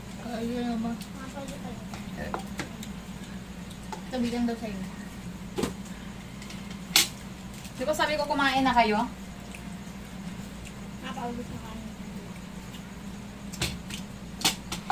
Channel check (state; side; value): identical; both; correlation 1.00